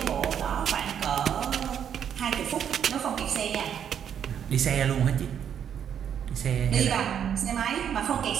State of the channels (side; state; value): left; quieter; 8.7 dB